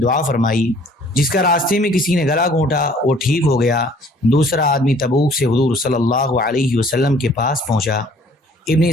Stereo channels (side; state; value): both; normal; correlation 0.56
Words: فرمائی۔ جس کا راستے میں کسی نے گلا گھونٹا وہ ٹھیک ہو گیا۔ دوسرا آدمی تبوک سے حضور صلی اللہ علیہ وسلم کے پاس پہنچا۔ ابن